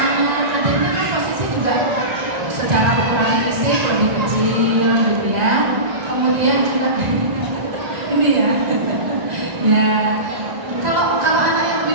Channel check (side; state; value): left; late; 1.9 ms